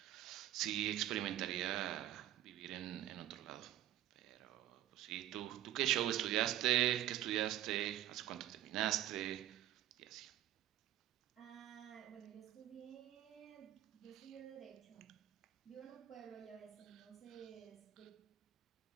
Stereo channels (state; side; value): quieter; left; 13.1 dB